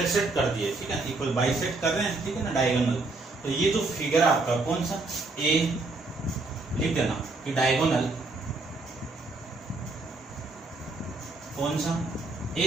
कर दिए, ठीक है, इक्वल बाइसेक्ट कर रहे हैं, ठीक है ना, डायगोनल, तो ये जो फिगर आपका कौन सा A लिख देना कि डायगोनल कौन सा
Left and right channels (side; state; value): left; quieter; 3.3 dB